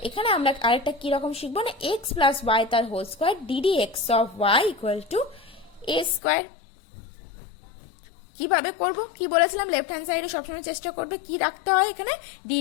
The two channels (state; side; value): drops out; right; at 6.2 s